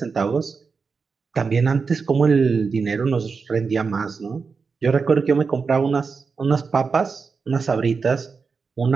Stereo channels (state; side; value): quieter; left; 5.0 dB